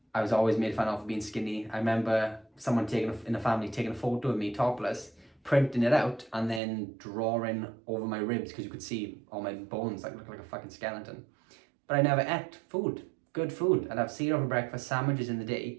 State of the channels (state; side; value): drops out; left; at 6.6 s